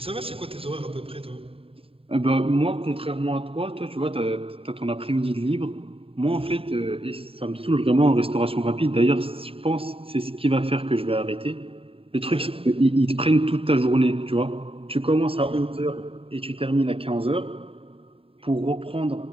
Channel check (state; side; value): late; left; 0.27 ms